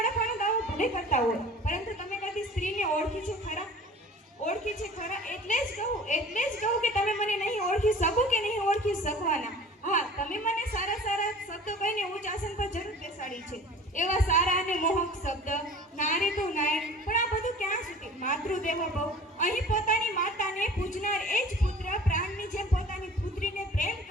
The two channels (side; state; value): both; normal; correlation 0.44